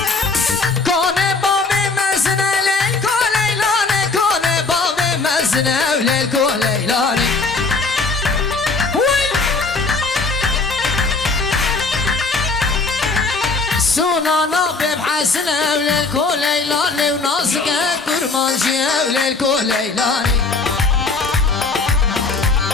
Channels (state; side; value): quieter; right; 3.9 dB